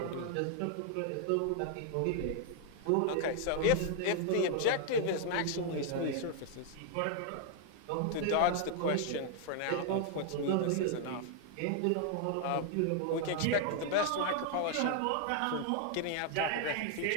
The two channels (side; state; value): both; different; correlation 0.00